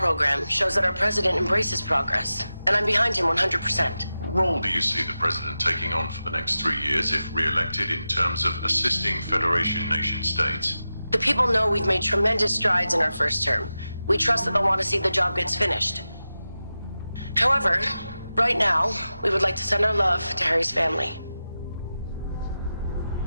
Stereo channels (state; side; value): inverted; both; correlation -0.92